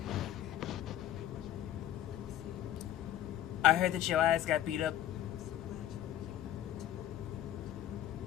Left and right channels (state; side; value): quieter; right; 12.2 dB